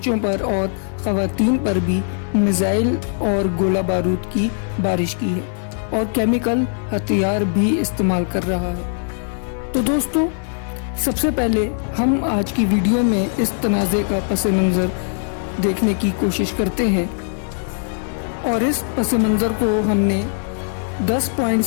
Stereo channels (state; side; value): silent; right; 57 dB below the other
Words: पर और ख़वातीन पर भी मिसाइल और गोला बारूद की बारिश की है और केमिकल हथियार भी इस्तेमाल कर रहा है। तो दोस्तों, सबसे पहले हम आज की वीडियो में इस तनाज़े का पस मंज़र देखने की कोशिश करते हैं और इस पस मंज़र को हमने 10